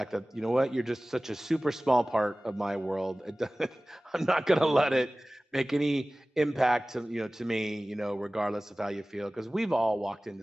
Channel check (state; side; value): normal; both; correlation 0.98